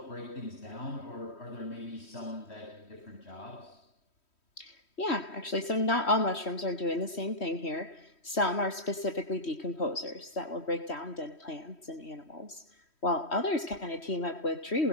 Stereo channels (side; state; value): right; late; 3.1 ms